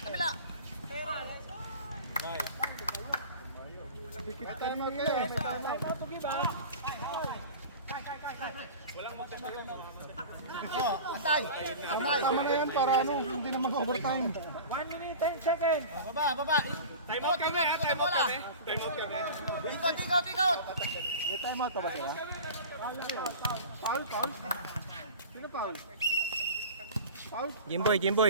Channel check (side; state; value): both; inverted; correlation -0.36